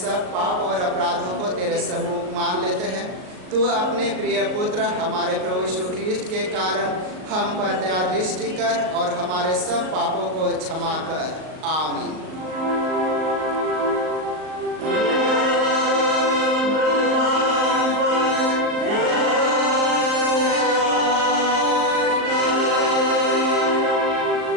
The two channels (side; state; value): left; late; 38 ms